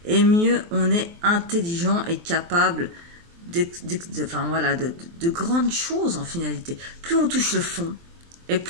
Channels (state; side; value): late; left; 23 ms